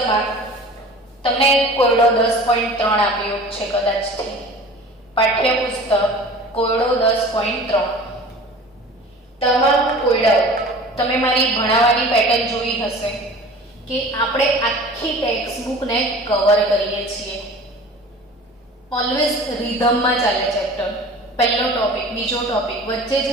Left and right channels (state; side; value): normal; both; correlation 0.42